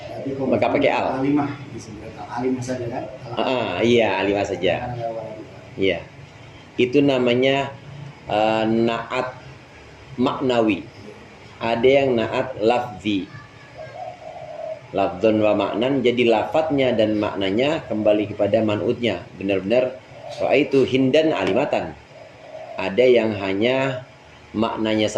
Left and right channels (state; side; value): identical; both; correlation 1.00